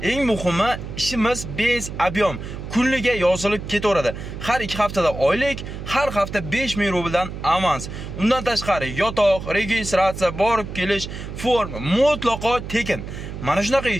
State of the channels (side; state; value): right; noise; hum, 9 dB below the sound